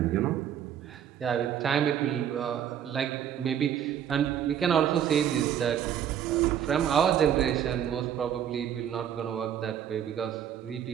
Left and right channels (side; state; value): left; quieter; 9.5 dB